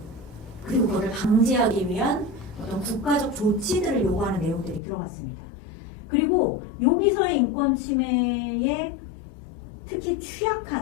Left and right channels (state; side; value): drops out; right; at 4.8 s